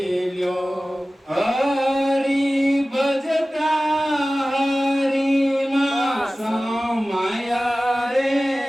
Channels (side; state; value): both; normal; correlation 0.97